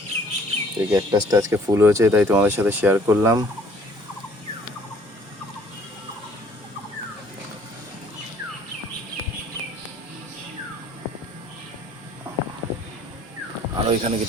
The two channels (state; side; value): normal; both; correlation 0.57